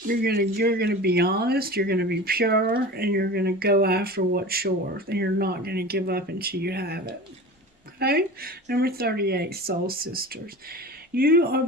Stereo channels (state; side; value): normal; both; correlation 0.34